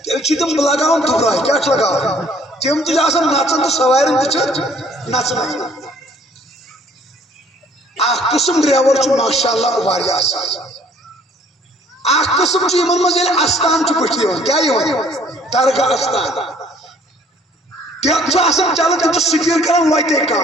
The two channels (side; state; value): both; normal; correlation 0.58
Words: تیل چھ تم لگاون دبرائی کیا چھ لگاون تم تہ آسان نژن تو سوارن تہ چھ نژن اکھ قسم ڈرائیور چھ ماشاءاللہ واریہ اصل اکھ قسم چھ یمن مز یل استان چھ بٹھ یوان کیا یوان درگاہ استان تم چھ آسان چلان تم چھ سٹیر کران وتے